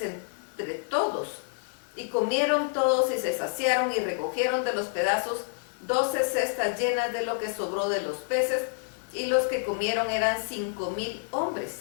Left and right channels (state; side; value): silent; right; digital silence